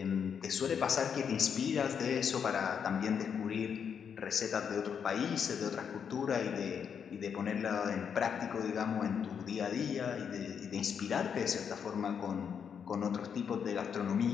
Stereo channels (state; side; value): quieter; right; 7.3 dB